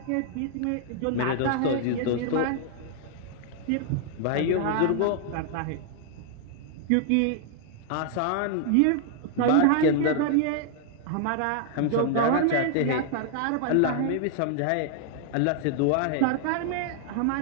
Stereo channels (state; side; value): different; both; correlation 0.00